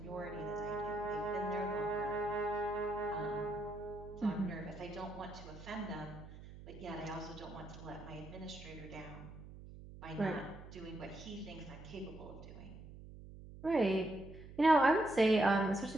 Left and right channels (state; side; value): noise; right; hum, 15 dB below the sound